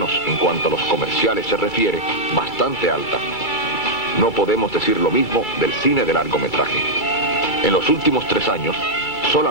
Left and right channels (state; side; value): late; right; 2.3 ms